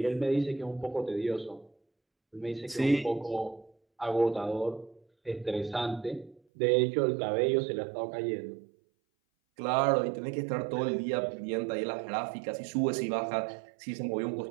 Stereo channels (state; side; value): drops out; left; at 6.4 s